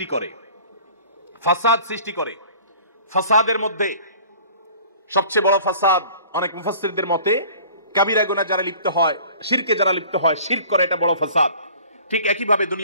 করে। ফাসাদ সৃষ্টি করে, ফাসাদের মধ্যে সবচেয়ে বড় ফাসাদ অনেক মুফাসসিরদের মতে কাবিরা গুনাহ যারা লিপ্ত হয়, শিরকে যারা লিপ্ত হয়, শিরক করে, এটা বড় ফাসাদ। ঠিক একইভাবে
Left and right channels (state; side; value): inverted; both; correlation -0.48